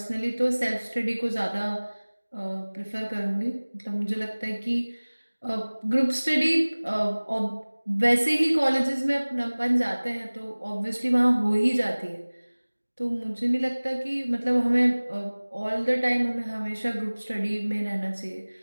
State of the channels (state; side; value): inverted; both; correlation -1.00